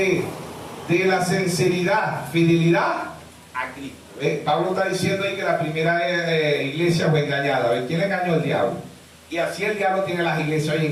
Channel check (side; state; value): both; identical; correlation 1.00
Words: la sinceridad, fidelidad a Cristo. Pablo está diciendo ahí que la primera iglesia fue engañada. ¿Quién engañó? El diablo. Y así el diablo tiene las iglesias hoy